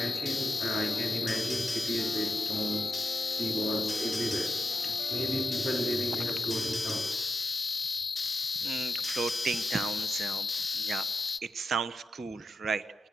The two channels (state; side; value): normal; both; correlation 0.87